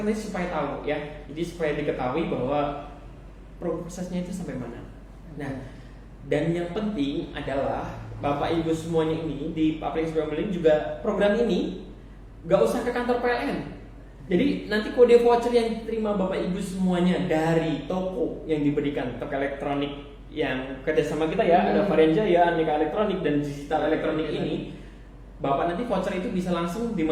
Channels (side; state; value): both; identical; correlation 1.00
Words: ini supaya tahu ya. Jadi supaya diketahui bahwa prosesnya itu sampai mana. Nah, dan yang penting adalah Bapak Ibu semuanya ini di aplikasi PLN juga program ini gak usah ke kantor PLN. Jadi nanti kode voucher yang terima Bapak Ibu semuanya dari toko yang diberikan, toko elektronik yang kerjasama kita ya, ada Varian Jaya, Aneka Elektronik dan Digital Elektronik ini, Bapak nanti voucher itu bisa langsung